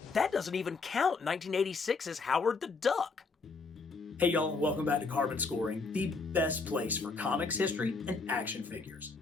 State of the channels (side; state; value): right; quieter; 4.2 dB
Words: that doesn't even count 1986's Howard the Duck. Hey y'all, and welcome back to Carbon Scoring, the best place for comics history and action figures.